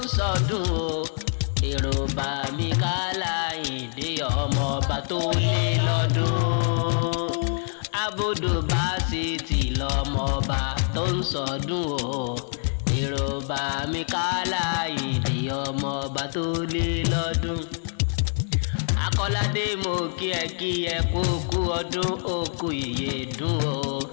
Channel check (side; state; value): right; silent; 57 dB below the other